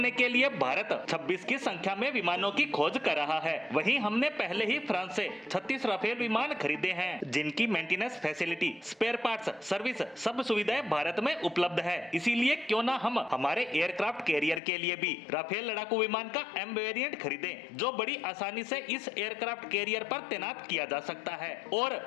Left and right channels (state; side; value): drops out; right; at 14.6 s